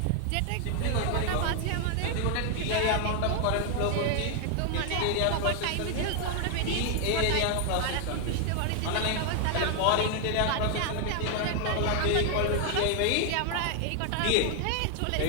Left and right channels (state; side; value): different; both; correlation 0.00